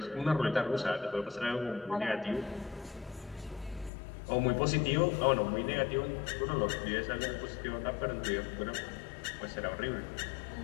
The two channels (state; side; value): drops out; right; at 3.9 s